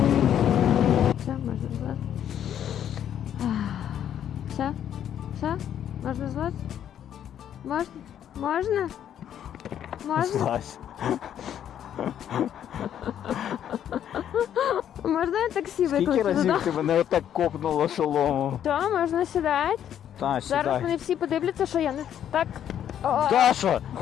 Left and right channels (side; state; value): right; quieter; 9.9 dB